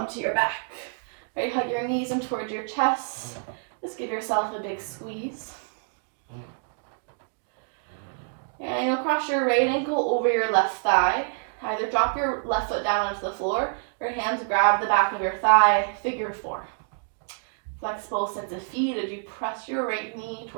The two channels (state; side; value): silent; left; digital silence